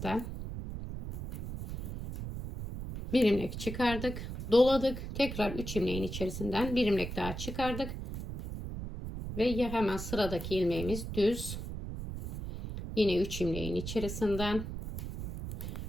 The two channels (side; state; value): right; noise; rumble, 7 dB below the sound